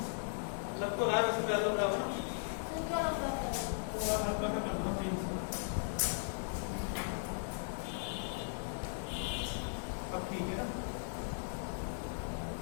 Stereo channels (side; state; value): right; silent; digital silence